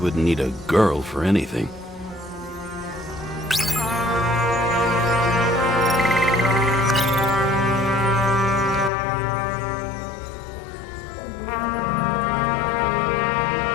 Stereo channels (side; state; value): right; drops out; at 8.9 s